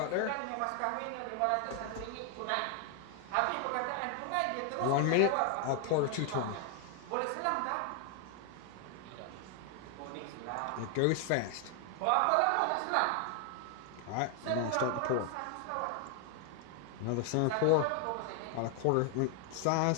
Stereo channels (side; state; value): both; different; correlation 0.00